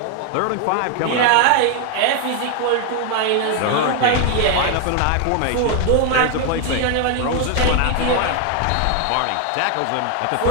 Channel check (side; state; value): both; different; correlation 0.01